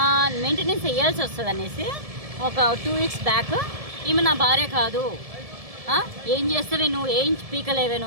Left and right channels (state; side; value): late; left; 1.7 ms